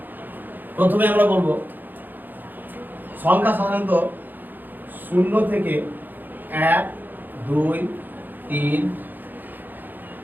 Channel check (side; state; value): left; late; 0.088 ms